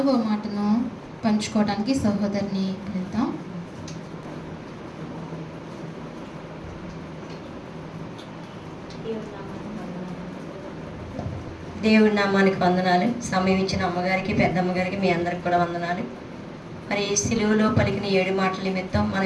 మాటను పంచుకోవడానికి సహోదరిని వెళ్తాం. దేవుడి నామానికి వందనాలు. సమయం ఇచ్చిన అమ్మగారికి, పెద్దమ్మగారికి, మీ అందరికి కూడా వందనాలు. మరి సిలువలో పలికిన 7 మాటల నిమిత్తం మనం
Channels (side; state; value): both; identical; correlation 1.00